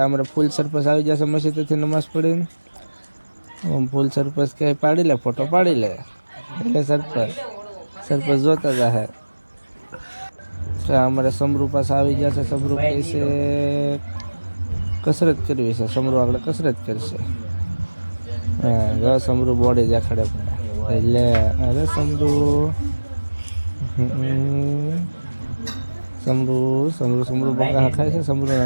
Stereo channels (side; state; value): both; inverted; correlation -1.00